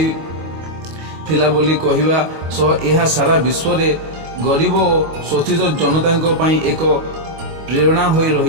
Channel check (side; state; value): left; late; 25 ms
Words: थिला बोली कहिबा सह एहा सारा विश्व रे गरीब और शोषित जनता पई एक प्रेरणा होई